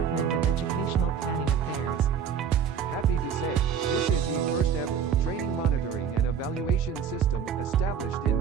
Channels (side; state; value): left; quieter; 7.4 dB